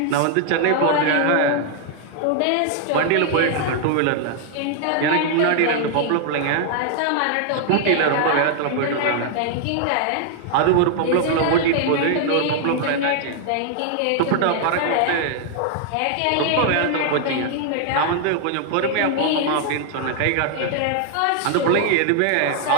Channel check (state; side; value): different; both; correlation 0.00